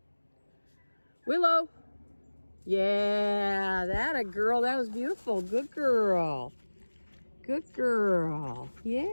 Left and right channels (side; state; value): both; inverted; correlation -1.00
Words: Willow. Yeah, that a girl. That was beautiful. Good girl. Good girl.